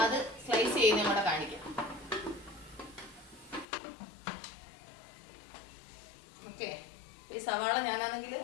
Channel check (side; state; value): right; drops out; at 3.7 s